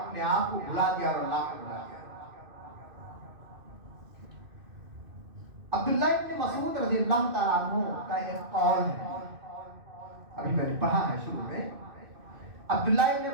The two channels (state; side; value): late; left; 2.6 ms